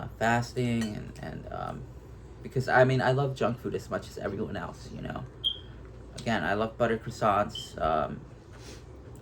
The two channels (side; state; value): both; identical; correlation 1.00